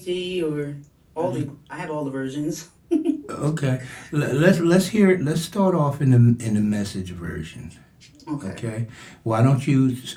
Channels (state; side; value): identical; both; correlation 1.00